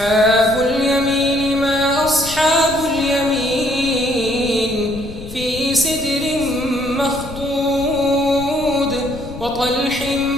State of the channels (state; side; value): noise; left; rumble, 13 dB below the sound